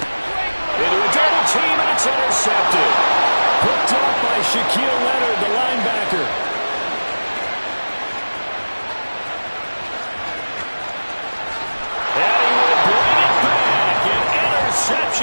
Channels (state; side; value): inverted; both; correlation -1.00